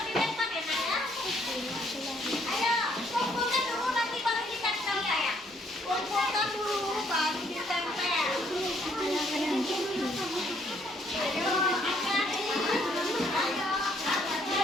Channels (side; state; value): both; normal; correlation 0.67